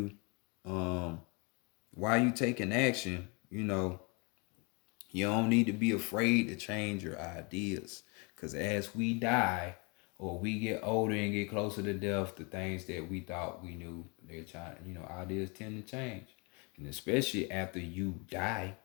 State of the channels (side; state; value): right; quieter; 31.4 dB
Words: why you taking action. You know, you don't need to be afraid to change your ideas, because as we die or we get older and get closer to death, the things that we thought we knew, they're trying. You know, ideas tend to change, and especially after you die.